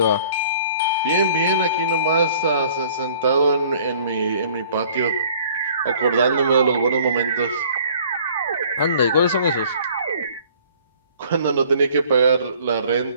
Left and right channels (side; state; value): both; inverted; correlation -0.54